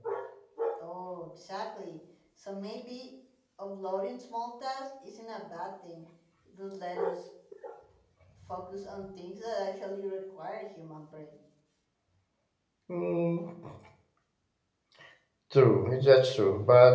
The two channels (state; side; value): identical; both; correlation 1.00